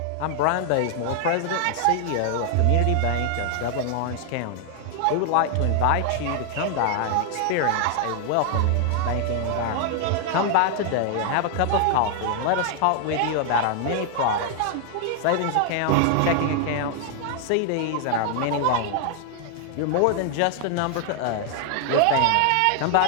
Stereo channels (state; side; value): different; both; correlation 0.00